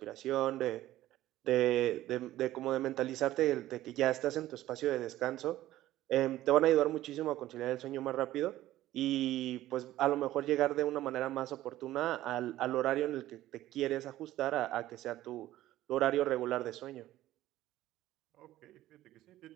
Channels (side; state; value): left; quieter; 14.8 dB